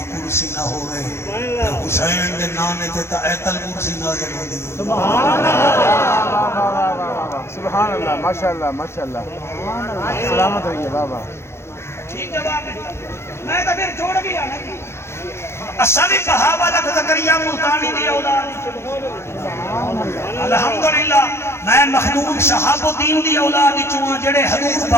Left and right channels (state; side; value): late; right; 0.13 ms